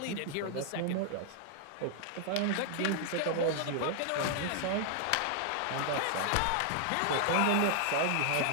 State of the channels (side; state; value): both; different; correlation 0.00